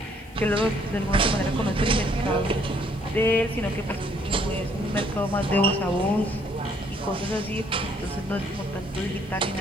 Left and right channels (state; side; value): noise; left; hiss, 28 dB below the sound